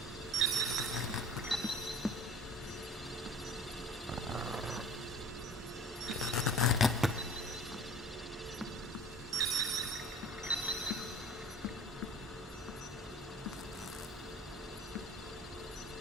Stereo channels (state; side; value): normal; both; correlation 0.44